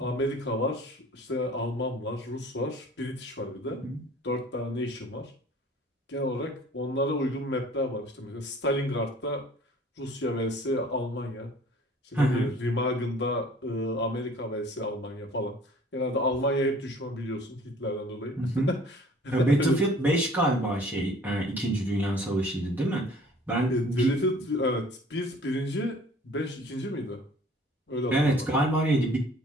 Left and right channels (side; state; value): both; normal; correlation 0.51